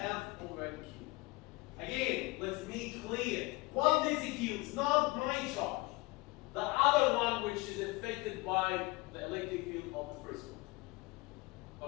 over Q. Again, let's make clear. What this Q is not my charge. The other one which is affected by the electric field of the first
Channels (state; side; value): quieter; right; 23.0 dB